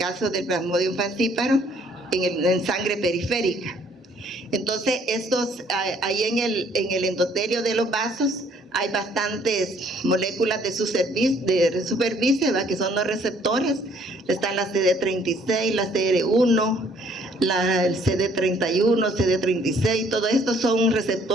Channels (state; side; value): normal; both; correlation 0.62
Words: del Plasmodium falciparum en sangre periférica. Entonces ahí en el endotelio de los vasos hay bastantes moléculas de superficie, ¿verdad? Que son los receptores. Están la CD36, la CR1, el CD31, CD36, todo esto son